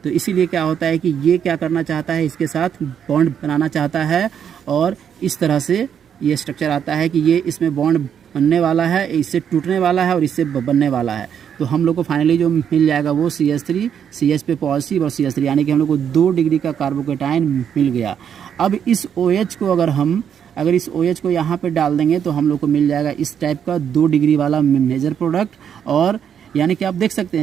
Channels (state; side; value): quieter; left; 8.3 dB